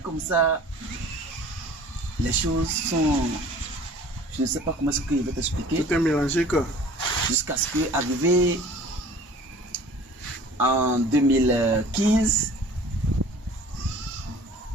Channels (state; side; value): normal; both; correlation 0.47